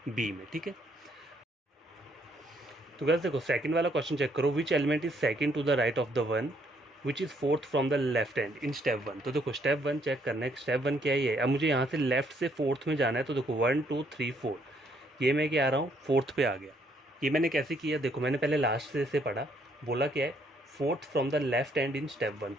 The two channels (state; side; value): normal; both; correlation 0.69